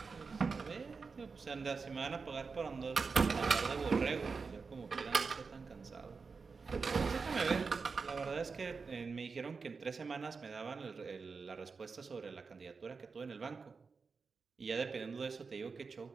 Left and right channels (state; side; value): quieter; left; 4.8 dB